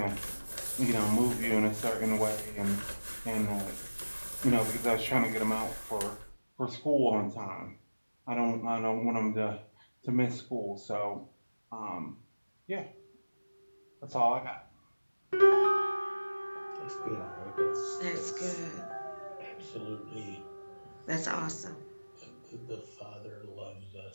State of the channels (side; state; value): both; inverted; correlation -1.00